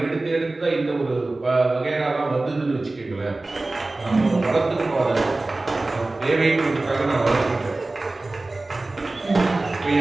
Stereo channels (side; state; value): left; quieter; 3.0 dB